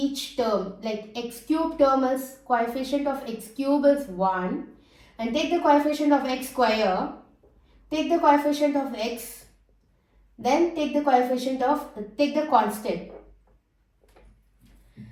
term, like x cube term is, coefficient of x cube is 1, and take the coefficient of x square, take the coefficient of x, then take the constant.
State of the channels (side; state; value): both; identical; correlation 1.00